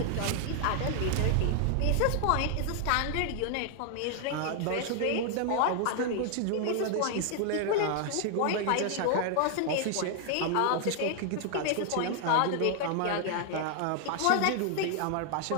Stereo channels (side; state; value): both; different; correlation 0.00